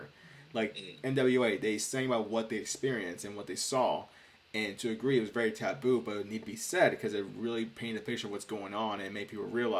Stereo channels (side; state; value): both; identical; correlation 1.00